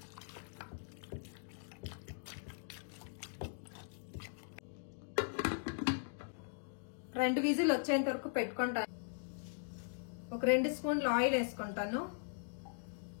రెండు విజిల్ వచ్చేంత వరకు పెట్టుకుంటాను. ఒక 2 స్పూన్లు ఆయిల్ వేసుకుంటాను.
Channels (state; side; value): silent; right; digital silence